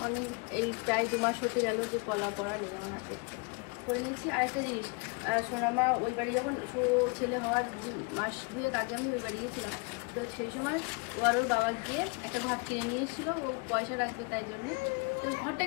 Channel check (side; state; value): right; quieter; 31.0 dB